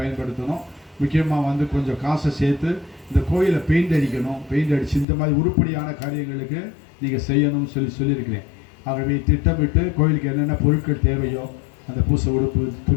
முக்கியமாக வந்து கொஞ்சம் காசை சேர்த்து இந்த கோயிலை பெயிண்ட் அடிக்கணும், பெயிண்ட் அடித்து இந்த மாதிரி உருப்படியான காரியங்களுக்கு நீங்கள் செய்யணும்னு சொல்லியிருக்கிறேன். ஆகவே திட்டமிட்டு கோயிலுக்கு என்னென்ன பொருட்கள் தேவையோ அந்த பூசை உடுப்பு,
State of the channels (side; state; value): right; drops out; at 5.1 s